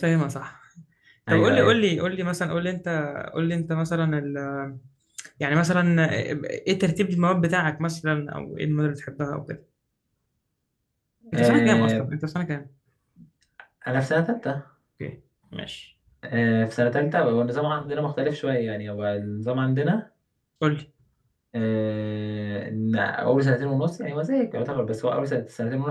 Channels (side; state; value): both; identical; correlation 1.00